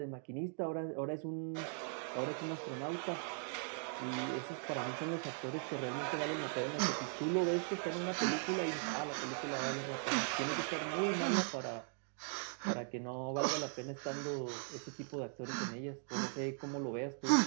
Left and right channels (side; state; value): left; silent; 51 dB below the other